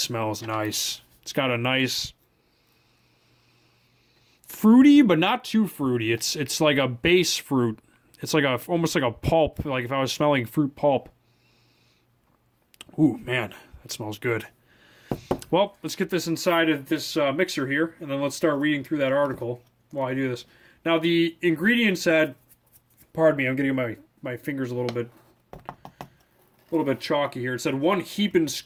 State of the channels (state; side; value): identical; both; correlation 1.00